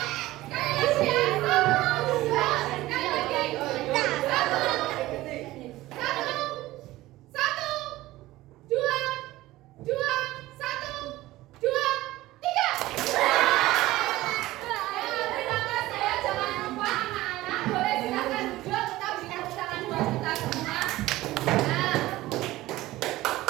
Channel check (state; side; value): quieter; left; 17.3 dB